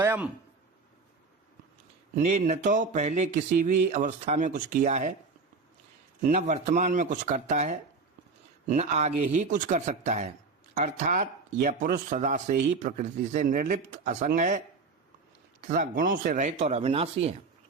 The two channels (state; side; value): quieter; left; 4.3 dB